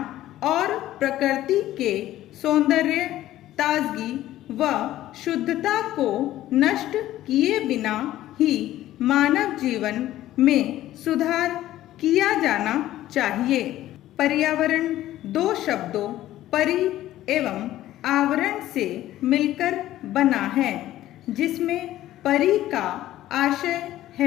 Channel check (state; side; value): quieter; right; 14.1 dB